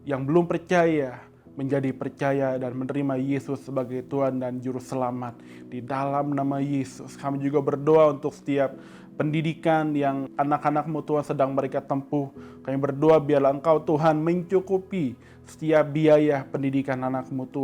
yang belum percaya menjadi percaya dan menerima Yesus sebagai Tuhan dan Juru Selamat. Di dalam nama Yesus, kami juga berdoa untuk setiap pendidikan yang anak-anak-Mu Tuhan sedang mereka tempuh. Kami berdoa biarlah Engkau Tuhan mencukupi setiap biaya pendidikan anak-Mu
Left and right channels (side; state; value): both; identical; correlation 1.00